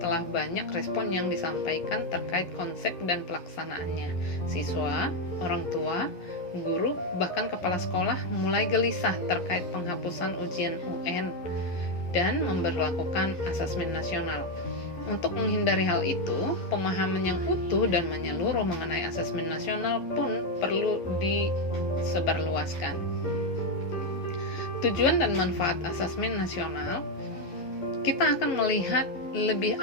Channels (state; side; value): late; right; 11 ms